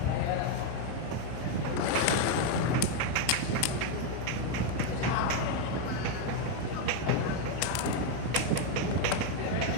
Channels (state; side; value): different; both; correlation 0.01